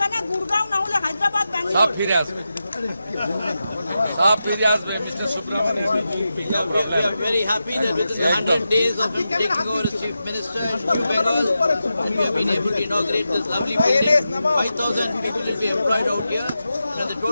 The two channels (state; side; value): inverted; both; correlation -0.90